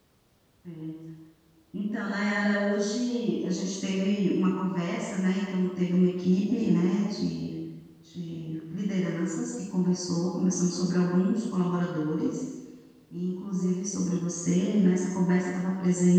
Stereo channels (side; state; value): both; identical; correlation 1.00